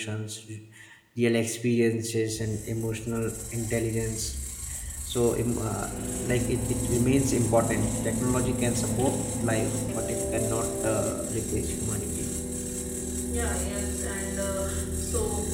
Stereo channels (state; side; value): identical; both; correlation 1.00